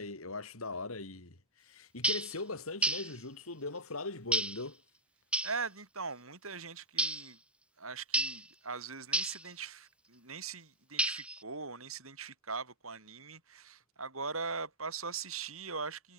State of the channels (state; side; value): normal; both; correlation -0.17